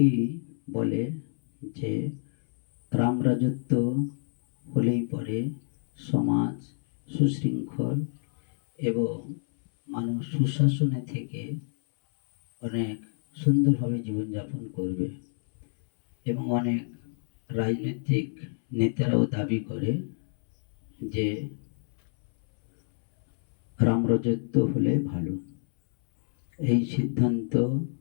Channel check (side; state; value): right; silent; 60 dB below the other